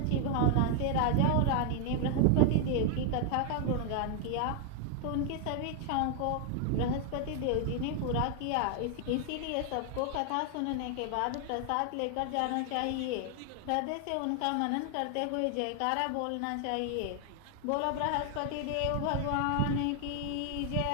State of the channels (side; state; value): both; different; correlation 0.00